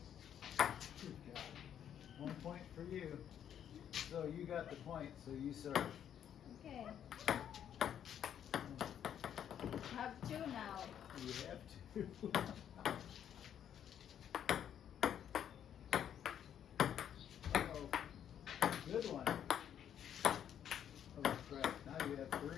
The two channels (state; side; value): quieter; right; 9.5 dB